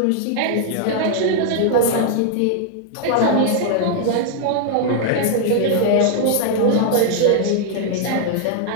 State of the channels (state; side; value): different; both; correlation 0.00